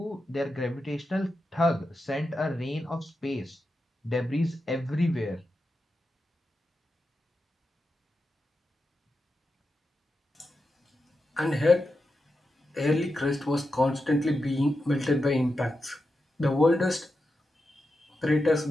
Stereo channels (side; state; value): both; normal; correlation 0.89